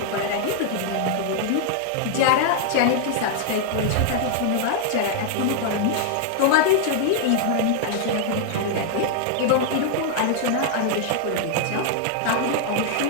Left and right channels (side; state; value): both; different; correlation 0.00